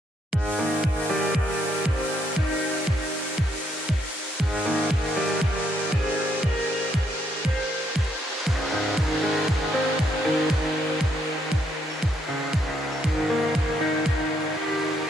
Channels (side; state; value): both; normal; correlation 0.73